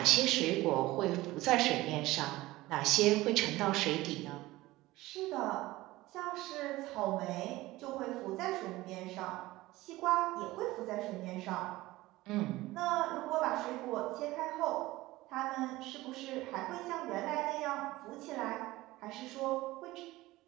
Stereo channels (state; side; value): quieter; left; 18.4 dB